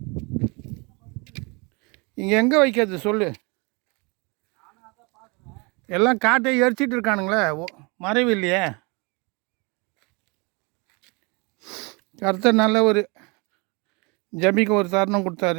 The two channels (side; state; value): left; quieter; 29.4 dB